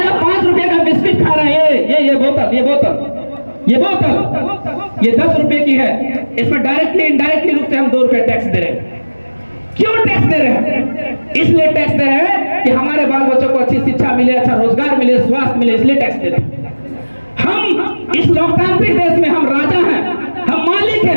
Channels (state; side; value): inverted; both; correlation -1.00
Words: आप 5 रुपए का बिस्किट खा रहे हैं, ये बोतल, ये 10 रुपए की है, इसमें डायरेक्टली इनडायरेक्टली रूप से हम 2 रुपए टैक्स दे रहे हैं। क्यों टैक्स दे रहे हैं? इसलिए टैक्स दे रहे हैं कि हमारे बाल बच्चों को अच्छी शिक्षा मिले, अच्छा रोजगार मिले, स्वास्थ्य मिले, इसलिए टैक्स दे रहे हैं। हम इस लोकतांत्रिक देश में हम राजा हैं, हम मालिक